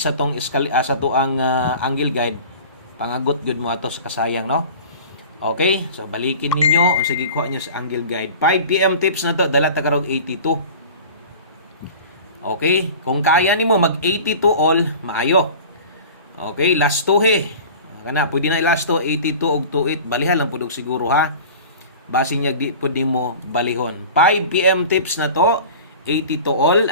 tong sa to ang angle guide pangagot gyud mo ato sa kasayang, no? Okay, so balikin ninyo, sige kuha nyo sa angle guide. 5 PM tips na to, dala ta karong 82. Okay, kung kaya nimo mag 82 all, maayo. Okay, last 2 he. Kana pwede na last 2 82 og 28, balihan lang pud siguro ha. Base niya di pud nimo balihon. 5 PM tips na to, 82 all,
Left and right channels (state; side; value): inverted; both; correlation -0.39